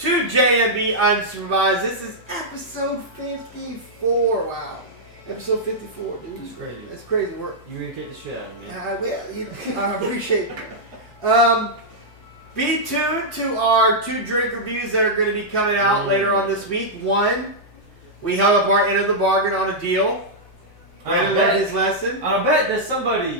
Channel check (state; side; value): normal; both; correlation -0.08